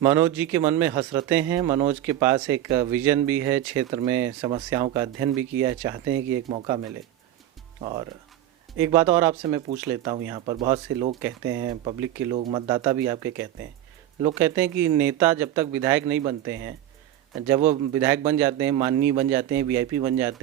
मनोज जी के मन में हसरतें हैं, मनोज के पास एक विजन भी है, क्षेत्र में समस्याओं का अध्ययन भी किया है, चाहते हैं कि एक मौका मिले। और एक बात और आपसे मैं पूछ लेता हूं, यहाँ पर बहुत से लोग कहते हैं, पब्लिक के लोग, मतदाता भी आपके कहते हैं, लोग कहते हैं कि नेता जब तक विधायक नहीं बनते हैं, जब वो विधायक बन जाते हैं, माननीय बन जाते हैं, वीआईपी बन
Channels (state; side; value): quieter; left; 12.5 dB